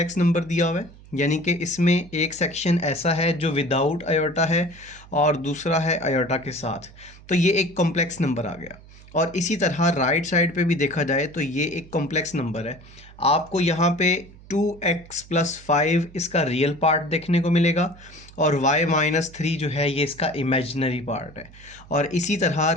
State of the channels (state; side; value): noise; right; hum, 21 dB below the sound